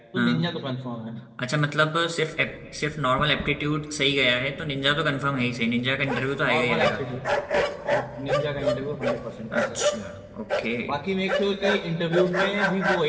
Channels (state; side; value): identical; both; correlation 1.00